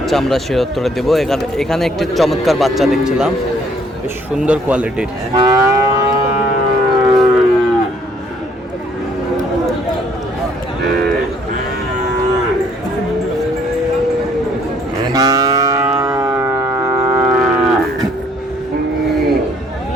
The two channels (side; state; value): both; normal; correlation 0.63